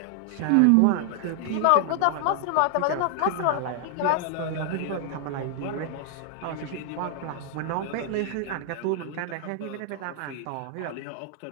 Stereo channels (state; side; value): different; both; correlation 0.00